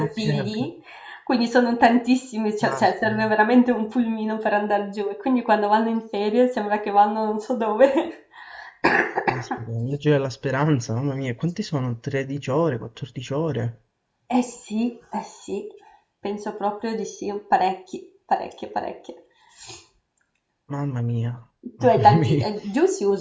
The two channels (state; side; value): identical; both; correlation 1.00